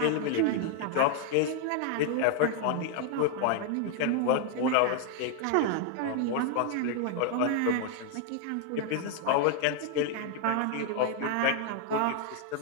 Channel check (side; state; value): both; different; correlation 0.00